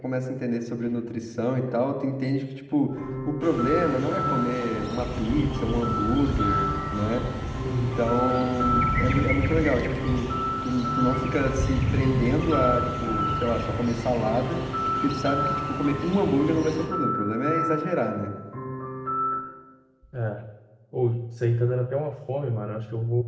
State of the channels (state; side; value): identical; both; correlation 1.00